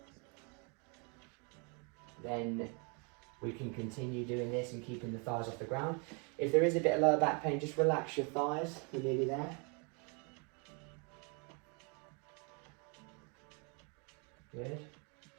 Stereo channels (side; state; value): left; quieter; 35.1 dB